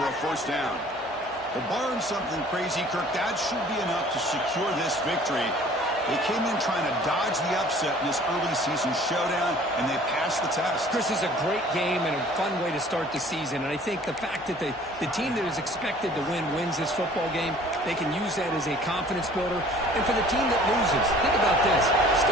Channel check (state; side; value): normal; both; correlation 0.51